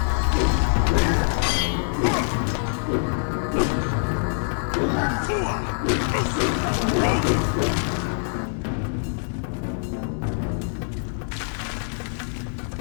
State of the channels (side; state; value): right; silent; 62 dB below the other